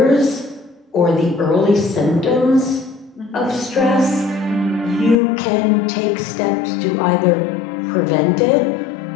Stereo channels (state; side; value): drops out; right; at 5.2 s